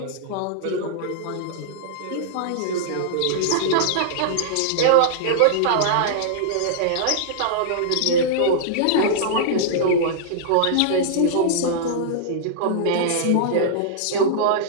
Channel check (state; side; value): different; both; correlation -0.02